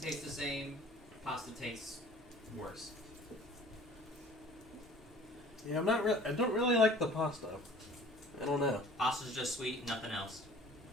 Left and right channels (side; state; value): both; normal; correlation 0.49